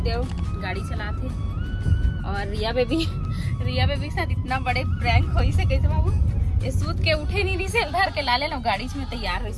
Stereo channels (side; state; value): both; identical; correlation 1.00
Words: देव गाड़ी चलाते और रिया बेबी के साथ इतना बड़े प्रैंक होई से कैसे बाबू ये सूत के उठे नहीं रही से धर के लाले लो गाड़ी में तैयार हुई